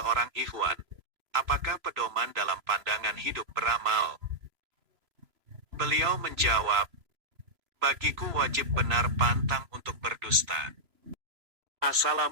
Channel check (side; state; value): left; late; 3.0 ms